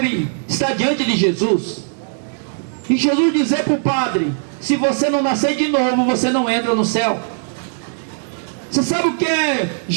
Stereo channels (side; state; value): left; silent; digital silence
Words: estar diante de Jesus, e Jesus dizer para o padre: se você não nascer de novo, você não entra no céu. Você sabe o que é